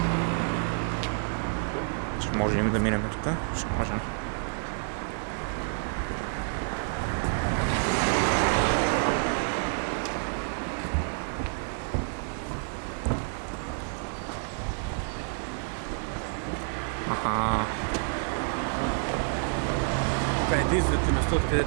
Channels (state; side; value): silent; left; 59 dB below the other